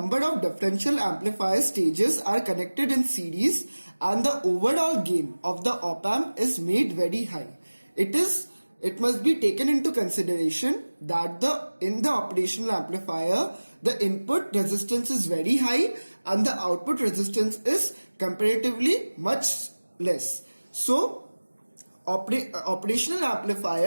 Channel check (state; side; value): inverted; both; correlation -1.00